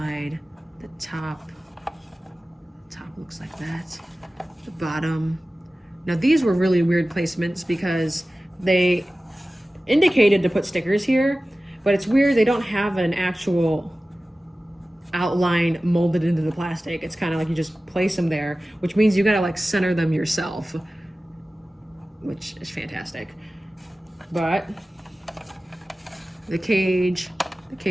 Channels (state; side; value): normal; both; correlation 0.96